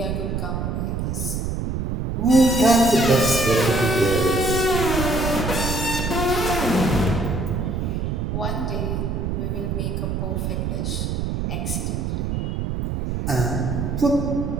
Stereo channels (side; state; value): right; noise; rumble, 1 dB below the sound